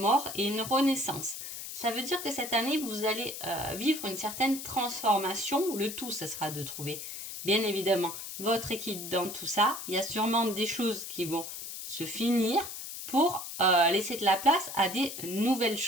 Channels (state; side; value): noise; left; hiss, 8 dB below the sound